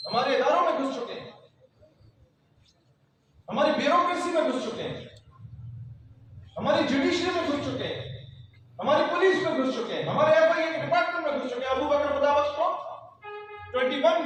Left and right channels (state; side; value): identical; both; correlation 1.00